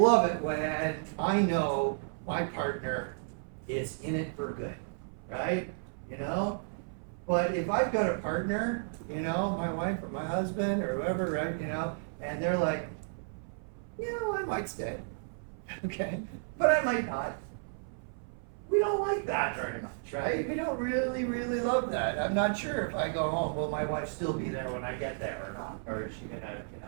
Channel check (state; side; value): silent; left; 56 dB below the other